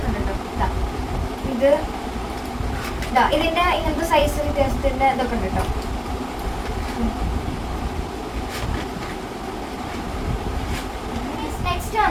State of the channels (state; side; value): identical; both; correlation 1.00